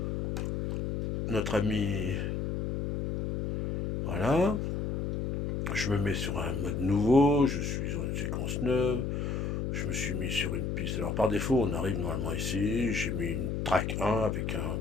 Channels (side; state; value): left; noise; hum, 1 dB below the sound